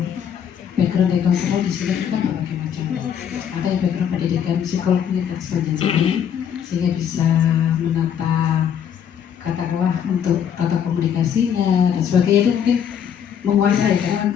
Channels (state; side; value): quieter; right; 8.5 dB